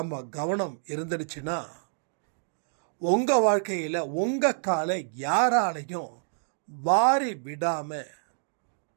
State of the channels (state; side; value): silent; left; digital silence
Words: கவனம் இருந்துடுச்சுன்னா உங்கள் வாழ்க்கையில் உங்கள் காலை யாராலையும் வாரி விடாமல்